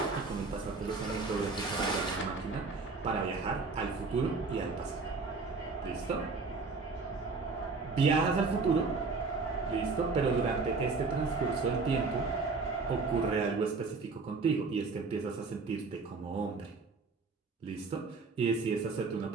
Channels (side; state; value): left; quieter; 4.2 dB